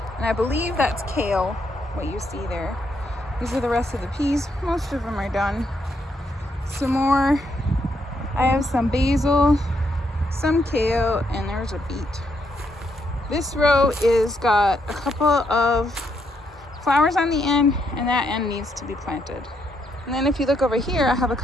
And I believe that's kale, what you see there. These are the rest of the peas. Most of them are done. Some more. I have some basil, some kale, and there's a beet. This row is got a couple of flowers on the end, and that end needs to be planted. And then if you look over here, I have a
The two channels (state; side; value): normal; both; correlation 0.77